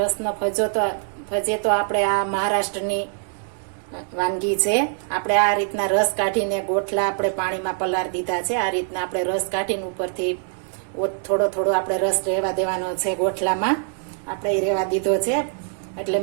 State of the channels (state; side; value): silent; left; digital silence